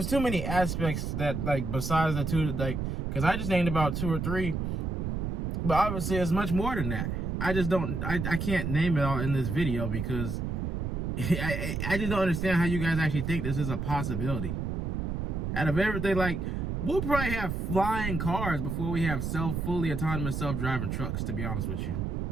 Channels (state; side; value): noise; right; rumble, 2 dB below the sound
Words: aspects that, like, besides the two, like, because I just named about 2 or 3, but obviously it's much more than that. I just don't, I can't name it all in this video because I just don't understand how you guys actually think this is a possibility. Out of everything, like, we'll probably have flying cars before we have fully autonomous self-driving trucks, to be honest with you.